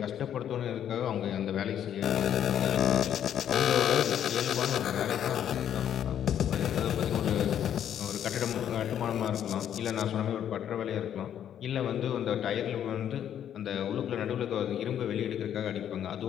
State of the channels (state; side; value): quieter; right; 9.9 dB